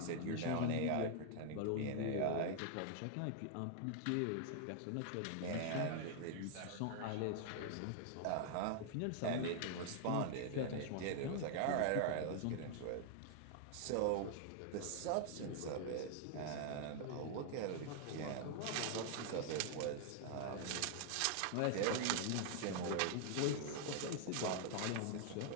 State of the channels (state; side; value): different; both; correlation 0.00